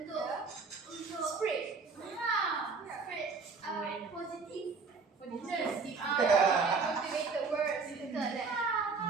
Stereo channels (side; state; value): left; quieter; 4.7 dB